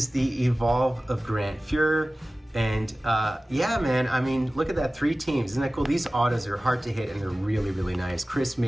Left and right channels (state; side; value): normal; both; correlation 0.97